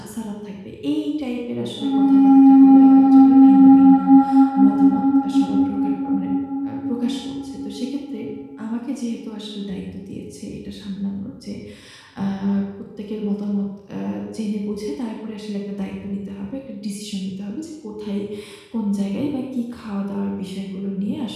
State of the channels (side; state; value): both; identical; correlation 1.00